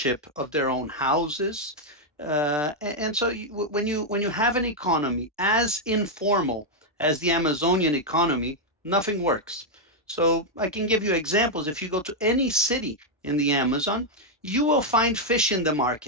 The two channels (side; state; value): both; normal; correlation -0.01